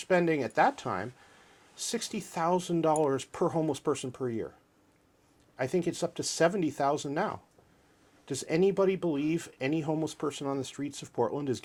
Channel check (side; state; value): both; identical; correlation 1.00